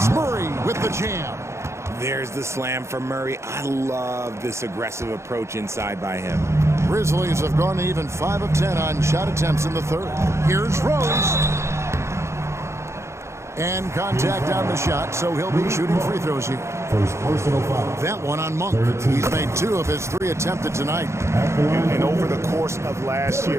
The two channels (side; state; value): left; late; 0.13 ms